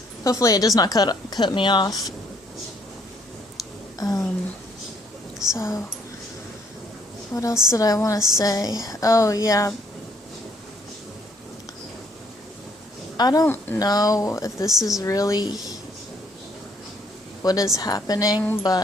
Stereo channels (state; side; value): normal; both; correlation 0.66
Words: Hopefully it does not cut me off. So what else did I want to say? Oh yeah, I don't know if this is really what is happening,